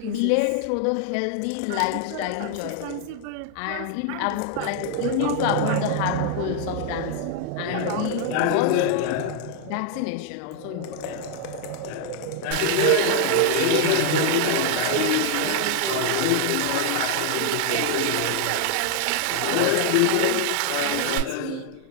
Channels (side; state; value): both; different; correlation 0.00